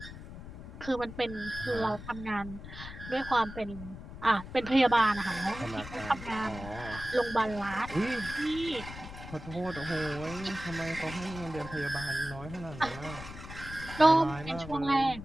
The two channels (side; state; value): left; noise; rumble, 12 dB below the sound